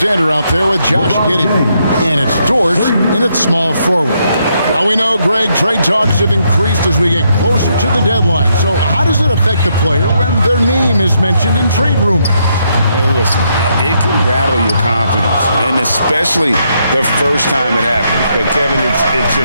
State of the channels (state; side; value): inverted; both; correlation -0.76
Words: out there with Josh Giddey. And it's Dort in at small forward. Now we know, Greg, trade talks have increased as we get closer to the deadline. So how does it affect the player when their name is mentioned in trade rumors? Listen, it can rattle your confidence, and especially the first time it happens. But, Kevin, it's